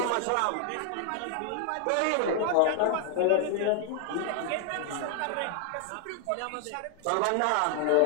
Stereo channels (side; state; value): both; different; correlation 0.00